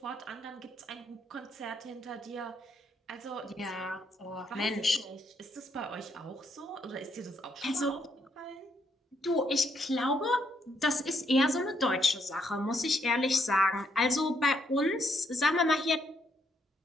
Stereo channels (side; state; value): both; normal; correlation 0.74